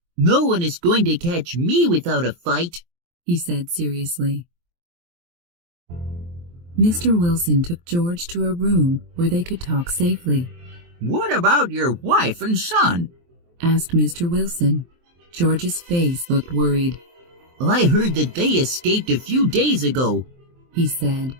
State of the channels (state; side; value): late; left; 23 ms